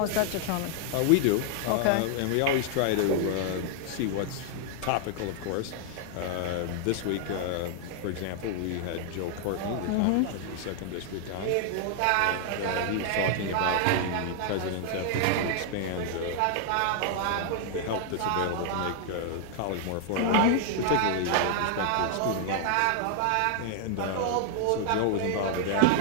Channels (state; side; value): different; both; correlation 0.00